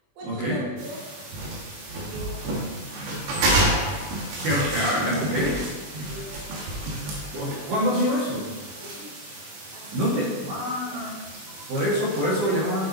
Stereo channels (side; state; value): left; late; 21 ms